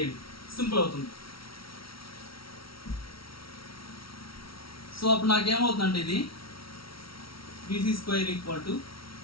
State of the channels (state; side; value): late; right; 0.75 ms